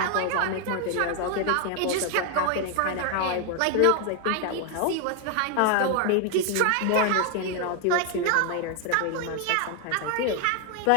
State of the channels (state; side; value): different; both; correlation 0.01